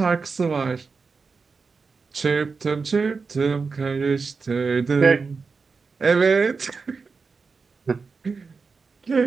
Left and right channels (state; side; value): quieter; left; 4.7 dB